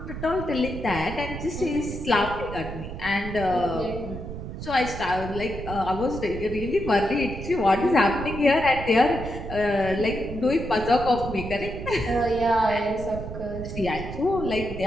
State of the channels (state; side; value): noise; right; rumble, 8 dB below the sound